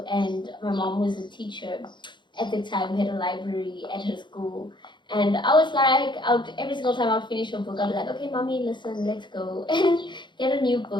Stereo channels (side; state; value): right; late; 0.22 ms